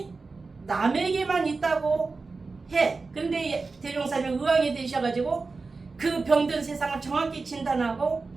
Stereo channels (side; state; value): left; quieter; 4.0 dB